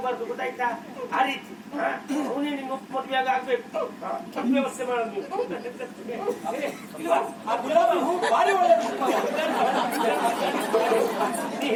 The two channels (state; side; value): identical; both; correlation 1.00